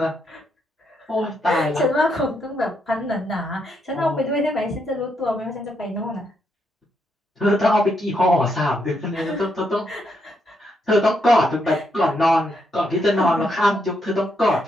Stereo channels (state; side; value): normal; both; correlation 0.78